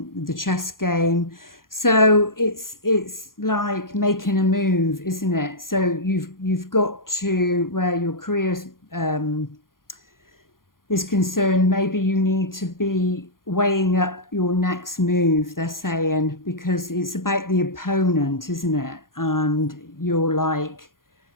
chess game. So it's like making a move, isn't it? So you've got to, where your career is concerned, maybe you need to be weighing up your next move, they're saying, because it's about the opponent, isn't it? And you're like,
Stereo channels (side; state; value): right; late; 0.91 ms